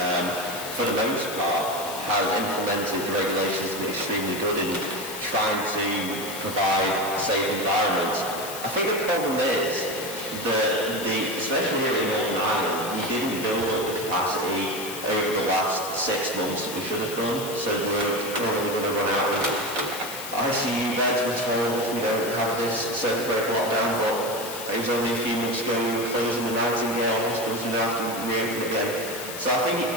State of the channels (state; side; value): noise; left; hiss, 9 dB below the sound